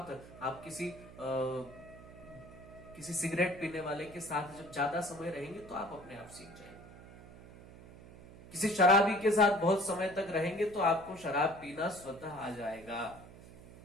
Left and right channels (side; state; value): right; noise; hum, 18 dB below the sound